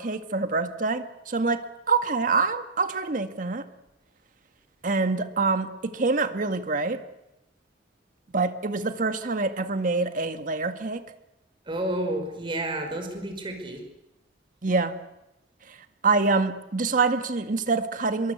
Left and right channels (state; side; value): quieter; left; 3.3 dB